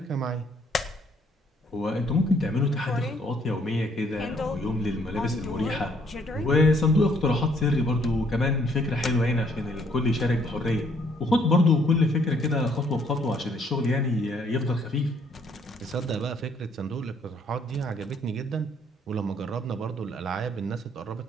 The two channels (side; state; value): both; normal; correlation 0.66